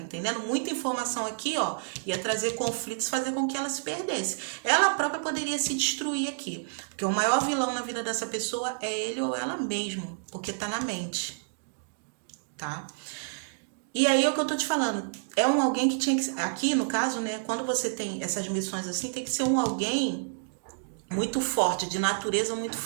Muita informação aqui, ia trazer conflitos, fazer com que ela se perdesse. Ela própria poderia se destruir aqui, porque o maior vilão na vida dessa pessoa é ele ou ela mesmo, porque tá na mente, tá? E aí é o que eu tô te falando, é alguém que tinha que, aqui no caso, né, quando você tem essas missões assim, tem que ser alguém muito forte, de natureza muito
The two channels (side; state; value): left; silent; digital silence